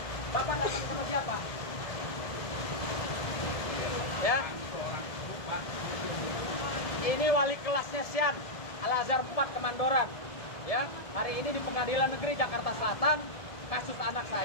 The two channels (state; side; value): late; right; 1.7 ms